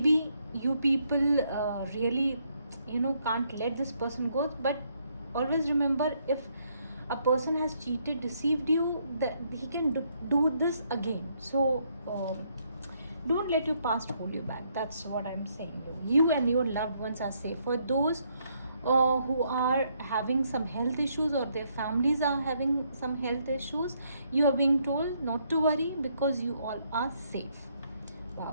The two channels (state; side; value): inverted; both; correlation -0.73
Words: you people really can't let this person go, but always remember, if a person has cheated, deceived you, that he can do this again. So don't let your past hold you back. That's what I'm saying. You and your loved ones are safe. For those who are having some health issues or their families are having some health issues, you are being told not to worry because you all are safe.